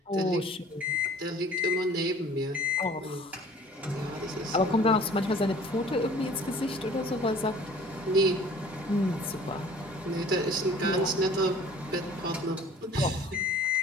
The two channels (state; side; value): normal; both; correlation 0.50